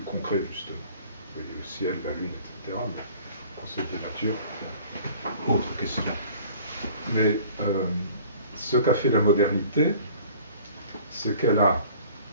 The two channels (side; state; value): both; inverted; correlation -0.50